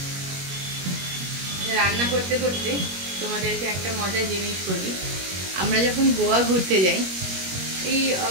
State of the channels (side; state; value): left; late; 21 ms